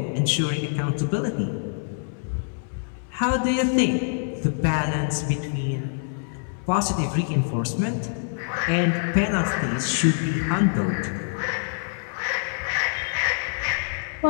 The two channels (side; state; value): right; silent; 62 dB below the other